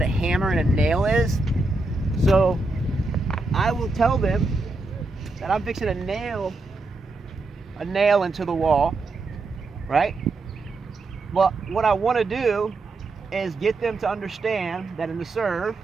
a hammer and a nail is. So I will tell them that I'm fixing to nail a nail into the wall, right? But what I want to do is get them to understand that in the serve,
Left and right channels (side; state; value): left; quieter; 3.3 dB